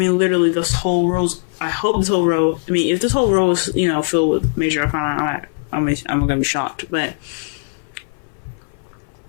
this whole row, if this whole row is, filled with major arcana, I'm gonna be shocked, but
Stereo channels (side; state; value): right; silent; 58 dB below the other